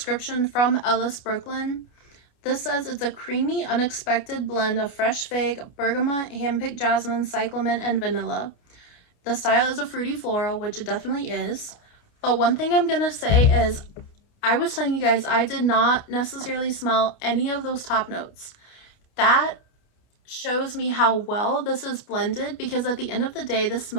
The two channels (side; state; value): right; late; 29 ms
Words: from Ellis Brooklyn, this says it's a creamy, unexpected blend of fresh fig, bergamot, handpicked jasmine, cyclamen, and vanilla. The style is a fruity floral, which it definitely is. But one thing I'm going to say is, I was telling you guys, I did not necessarily smell any of those top notes. That shows me how well this is blended, because at the end of the day, this